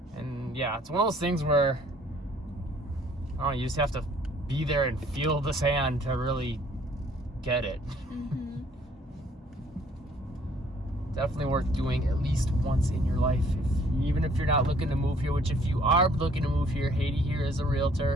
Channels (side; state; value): both; normal; correlation 0.60